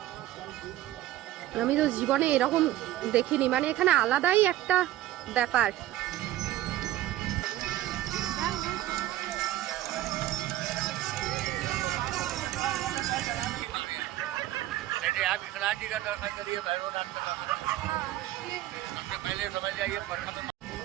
আমি তো জীবনে এরকম দেখিনি, মানে এখানে আলাদাই একটা ব্যাপার। आप विश्वनाथ जी का दर्शन करिए, भैरवनाथ का सबसे पहले समझ जाइए प्रथम।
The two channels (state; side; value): quieter; left; 14.6 dB